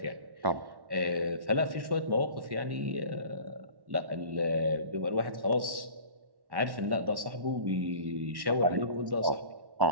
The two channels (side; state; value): left; late; 1.1 ms